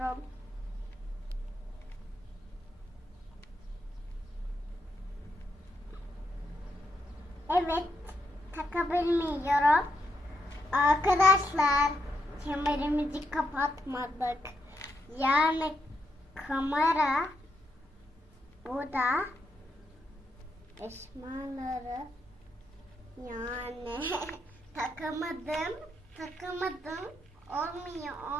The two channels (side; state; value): both; normal; correlation 0.80